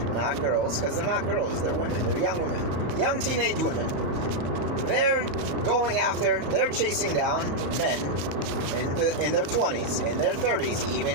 not girls, because they're not girls, they're women. They're young women. Young teenage women. They're they're chasing down men in their 20s, in their 30s,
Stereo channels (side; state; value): left; late; 34 ms